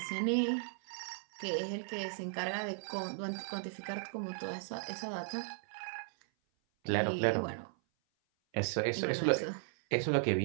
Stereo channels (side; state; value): left; silent; 54 dB below the other